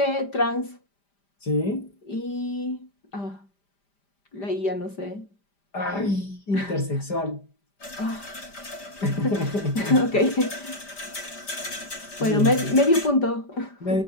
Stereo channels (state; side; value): late; right; 5.0 ms